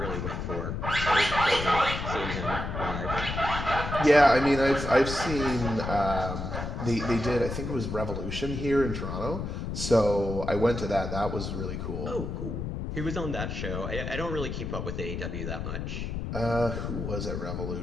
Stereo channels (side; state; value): left; noise; rumble, 4 dB below the sound